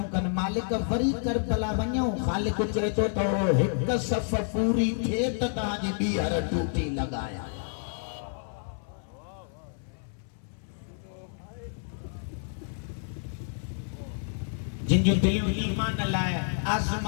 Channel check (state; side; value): silent; right; 58 dB below the other